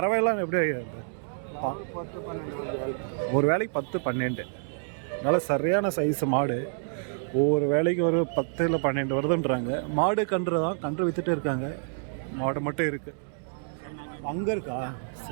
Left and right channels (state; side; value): silent; left; 59 dB below the other